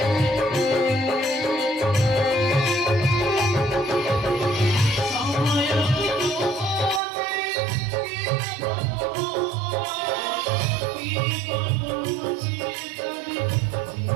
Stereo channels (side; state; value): left; drops out; at 7.0 s